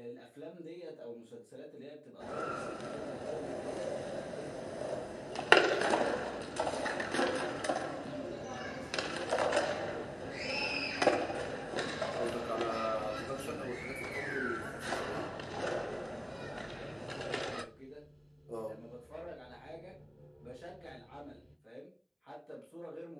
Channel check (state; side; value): identical; both; correlation 1.00